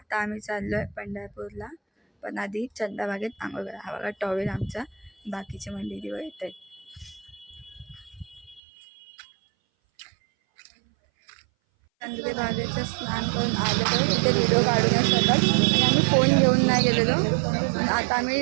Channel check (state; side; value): drops out; left; at 8.6 s